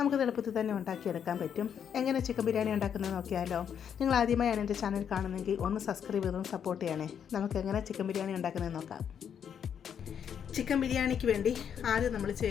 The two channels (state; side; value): quieter; right; 8.2 dB